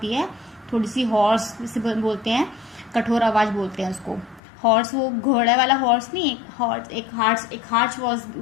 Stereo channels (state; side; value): drops out; right; at 4.4 s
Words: है, थोड़ी सी हॉर्स से बोलते हैं, कठोर आवाज़ बोलते हैं उसको. हॉर्स वो घोड़े वाला हॉर्स नहीं, एक हार्श